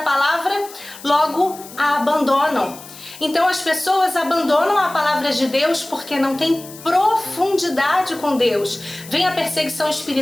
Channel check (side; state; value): left; noise; hiss, 17 dB below the sound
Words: logo a abandonam. Então as pessoas abandonam a palavra de Deus porque não tem profundidade com Deus. Vem a perseguição